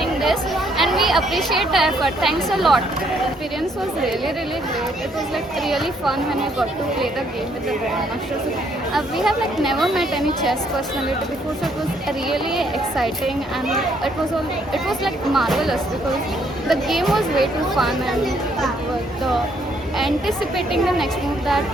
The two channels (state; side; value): normal; both; correlation 0.69